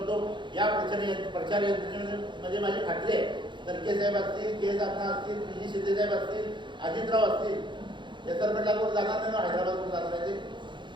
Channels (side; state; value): left; late; 0.23 ms